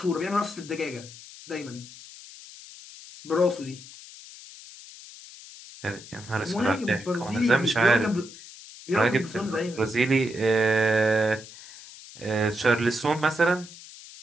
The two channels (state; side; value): noise; left; hiss, 17 dB below the sound